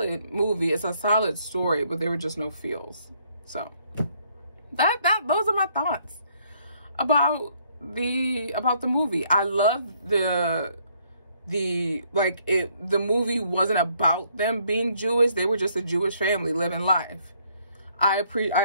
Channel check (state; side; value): inverted; both; correlation -0.68